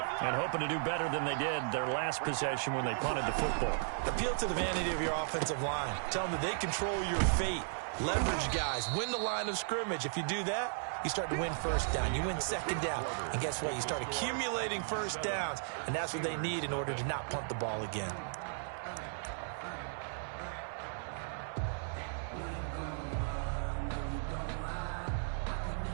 and hoping to do better than they did their last possession when they punted the football. Appeal to the vanity of your offensive line. Tell them that they control your fate. Leverage guys. Win the line of scrimmage. If you do that, you start to win first down. You win second down. And guess what? You start accumulating first downs. And that's what they need in order to not punt the ball again.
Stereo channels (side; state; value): left; silent; 54 dB below the other